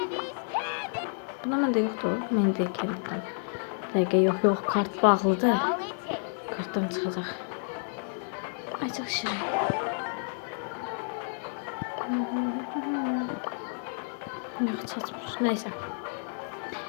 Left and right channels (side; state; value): right; silent; 58 dB below the other